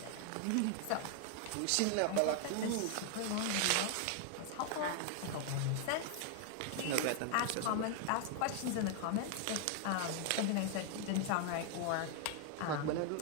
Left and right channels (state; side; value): different; both; correlation 0.00